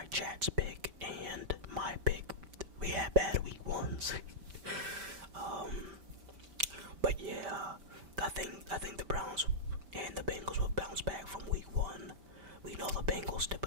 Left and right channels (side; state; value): left; late; 5.1 ms